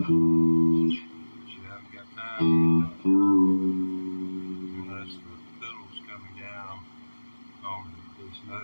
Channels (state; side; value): inverted; both; correlation -1.00